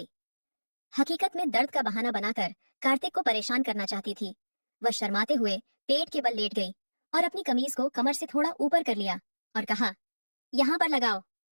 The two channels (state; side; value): inverted; both; correlation -1.00